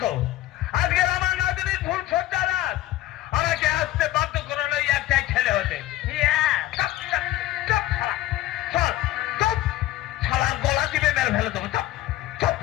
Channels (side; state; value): right; quieter; 15.0 dB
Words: আজকের আমার নাতনির ফুল সজ্জা রাত, আমাকে আসতে বাধ্য করে এই একটাই ছেলে হতে। চুপ, চুপ, চুপ, শালা, চল, চুপ, শালার গলা টিপে মেরে ফেলে দেবো। চুপ, চুপ,